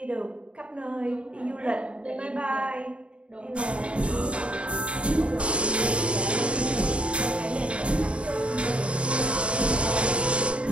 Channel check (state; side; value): late; left; 0.059 ms